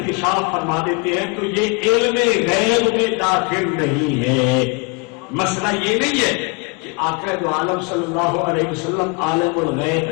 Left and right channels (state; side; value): quieter; right; 31.3 dB